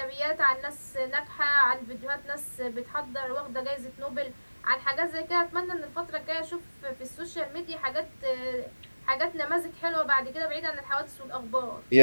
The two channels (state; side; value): inverted; both; correlation -1.00